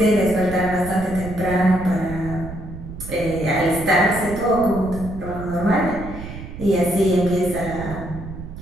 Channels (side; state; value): right; noise; rumble, 11 dB below the sound